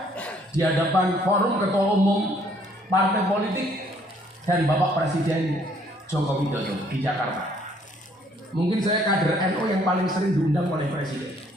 di hadapan forum ketua umum partai politik dan Bapak Presiden Joko Widodo di Jakarta. Mungkin saya kader NU yang paling sering diundang oleh Presiden.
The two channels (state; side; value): normal; both; correlation 0.63